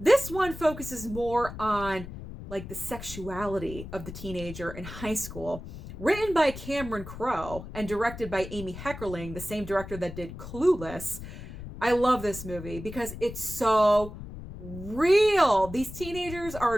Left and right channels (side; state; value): left; noise; rumble, 12 dB below the sound